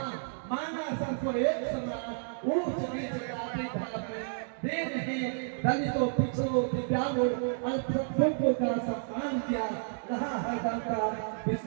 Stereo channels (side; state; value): left; silent; digital silence